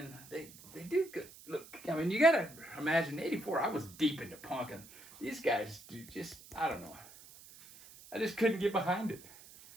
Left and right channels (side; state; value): right; noise; hiss, 20 dB below the sound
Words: they do good. Look, I mean, you gotta imagine, '84, I was deep into punk, and these guys just, I don't know. I just couldn't get behind it.